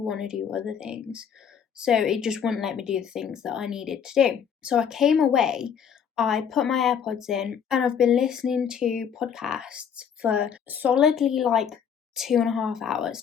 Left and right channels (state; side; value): quieter; right; 7.7 dB